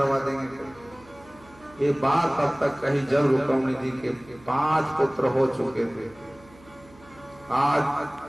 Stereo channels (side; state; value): right; noise; hum, 24 dB below the sound